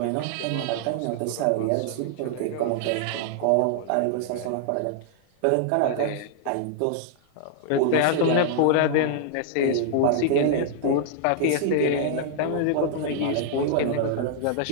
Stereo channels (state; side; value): different; both; correlation -0.01